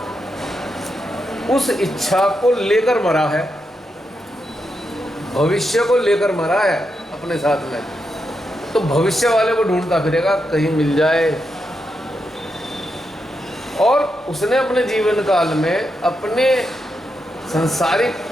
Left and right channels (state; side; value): normal; both; correlation 0.85